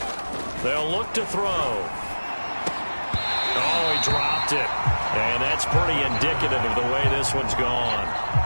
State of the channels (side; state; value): both; inverted; correlation -1.00